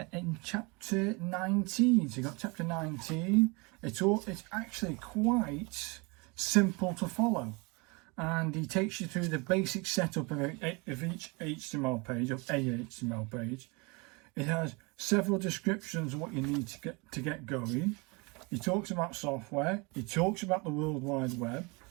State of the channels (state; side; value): quieter; left; 28.6 dB